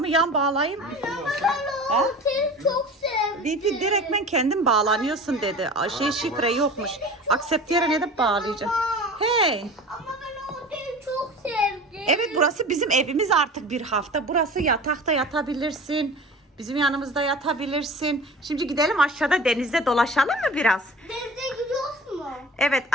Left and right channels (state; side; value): normal; both; correlation 0.38